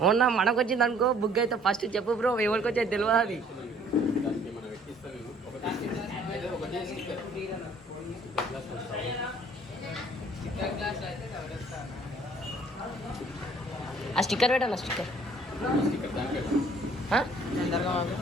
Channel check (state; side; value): normal; both; correlation 0.58